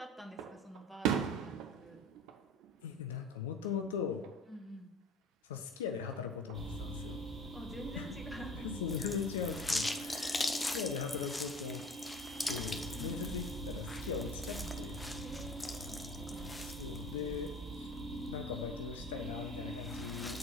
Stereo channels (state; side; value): normal; both; correlation 0.40